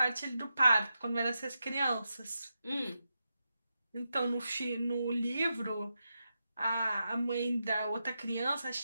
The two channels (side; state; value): both; inverted; correlation -0.88